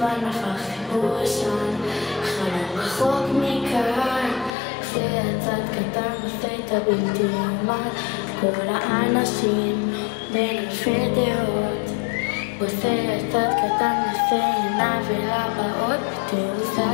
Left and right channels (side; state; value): right; drops out; at 4.5 s